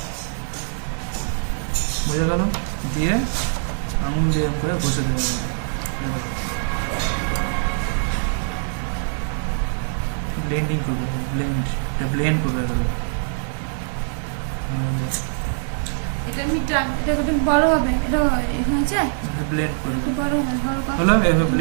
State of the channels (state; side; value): silent; left; digital silence